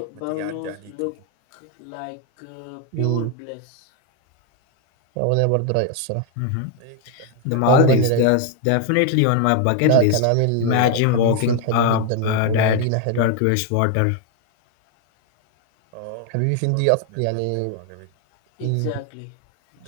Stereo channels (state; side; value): different; both; correlation 0.01